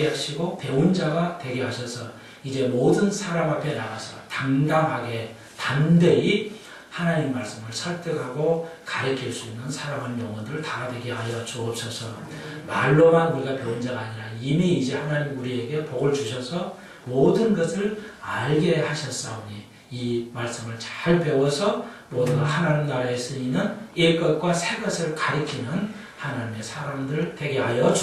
하시고 배운 자가 되게 하셔서 이제 모든 사람 앞에 나가서 당당하게 담대히 하나님 말씀을 설득하고 가르칠 수 있는 사랑하는 영혼들 다 되게 하여 주옵소서. 말로만 우리가 배운 자가 아니라 이미 이제 하나님 우리에게 복을 주셔서 모든 것을 알게 하셨사오니 이 말씀을 잘 배워서 모두가 하나님 나라에 쓰이는 옛것과 새것을 가리키는 하나님의 사람들 되게 하여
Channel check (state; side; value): identical; both; correlation 1.00